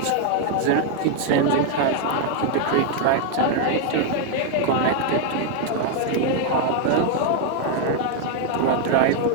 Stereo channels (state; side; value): different; both; correlation 0.00